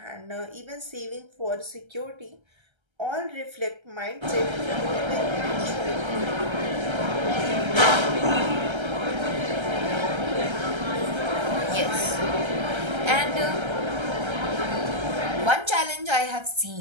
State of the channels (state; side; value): late; left; 1.3 ms